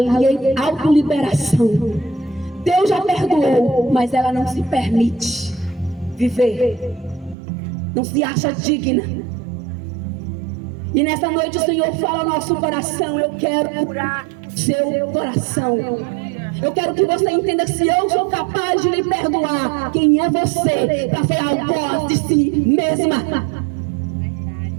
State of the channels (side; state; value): left; drops out; at 7.4 s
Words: autoliberação. Deus já perdoou, mas ela não se permite viver, não se acha digna. E nessa noite o Senhor fala ao nosso coração: eu quero curar seu coração. Eu quero que você entenda que se eu sou capaz de lhe perdoar, quem é você para falar voz de si mesma?